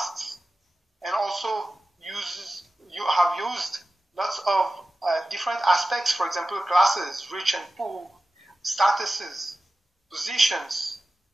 and also have used lots of different aspects, for example, classes, rich and poor, statuses, positions,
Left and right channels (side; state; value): both; normal; correlation 0.95